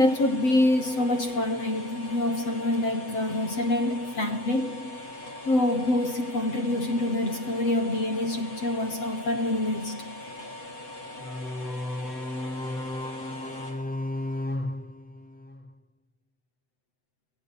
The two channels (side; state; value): right; late; 7.9 ms